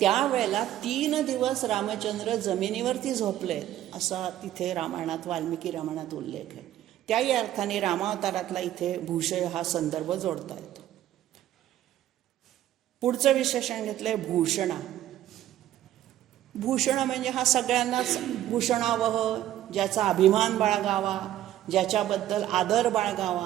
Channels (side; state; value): left; quieter; 12.8 dB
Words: त्यावेळेला 3 दिवस रामचंद्र जमिनीवरती झोपले असा तिथे रामायणात, वाल्मिकी रामायणात उल्लेख आहे. त्याही अर्थाने रामावतारातला इथे भूषय हा संदर्भ जोडता येतो. पुढचं विशेषण घेतलंय भूषणा. भूषण म्हणजे हा सगळ्यांनाच भूषणावह, ज्याचा अभिमान बाळगावा, ज्याच्याबद्दल आदर